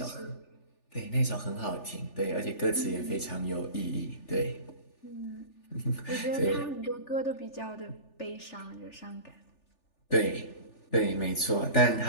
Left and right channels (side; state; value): right; late; 3.4 ms